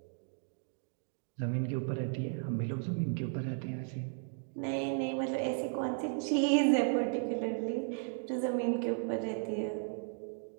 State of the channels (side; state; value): left; silent; 54 dB below the other